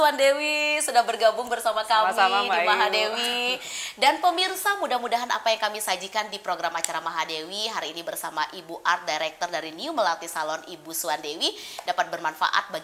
sudah bergabung bersama kami di Mahadewi. Dan pemirsa, mudah-mudahan apa yang kami sajikan di program acara Mahadewi hari ini bersama Ibu Art Director dari New Melati Salon, Ibu Swandewi, dapat bermanfaat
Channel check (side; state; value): both; identical; correlation 1.00